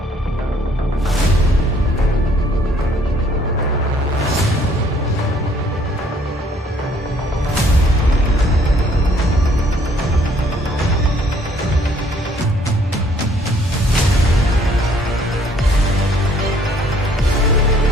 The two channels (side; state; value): both; normal; correlation 0.62